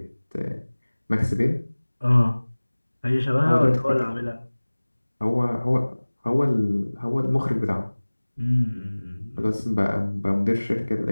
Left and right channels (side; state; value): both; inverted; correlation -1.00